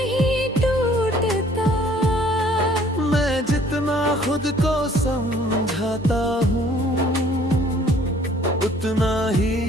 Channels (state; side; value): normal; both; correlation 0.57